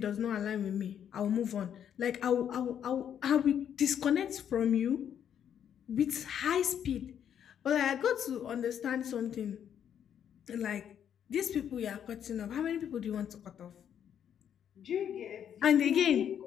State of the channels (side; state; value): right; quieter; 9.1 dB